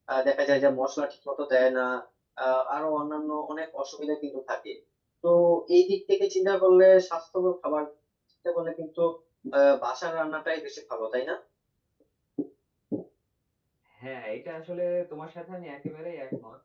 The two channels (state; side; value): identical; both; correlation 1.00